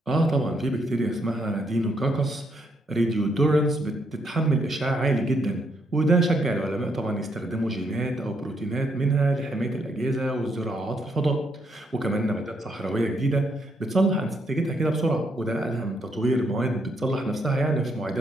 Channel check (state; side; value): normal; both; correlation 0.75